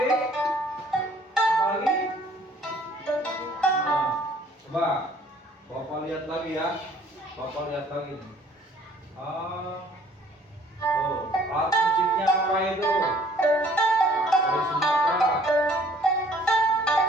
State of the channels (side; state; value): both; normal; correlation 0.58